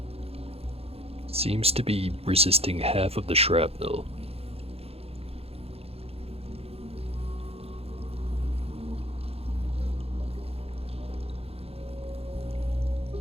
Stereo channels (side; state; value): left; late; 0.29 ms